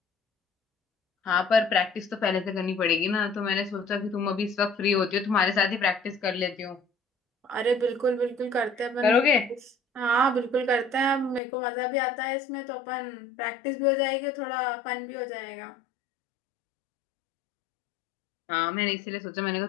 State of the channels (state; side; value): drops out; right; at 11.4 s